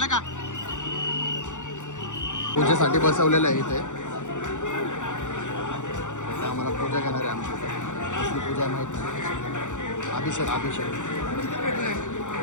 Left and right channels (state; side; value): late; right; 0.85 ms